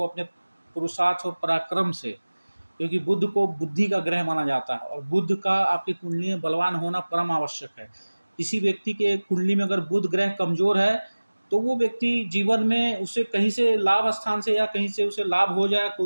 अपने पुरुषार्थ और पराक्रम से, क्योंकि बुध को बुद्धि का ग्रह माना जाता है और बुध का आपकी कुंडली में बलवान होना परम आवश्यक है। किसी व्यक्ति के कुंडली में अगर बुध ग्रह कमजोर है तो वो व्यक्ति जीवन में, उसे कहीं से लाभ स्थान से या कहीं से उसे लाभ हो जाए,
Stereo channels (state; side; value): inverted; both; correlation -1.00